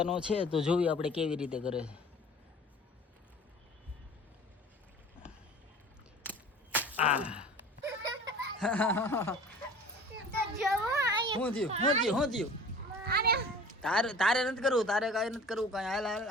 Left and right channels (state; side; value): normal; both; correlation 0.44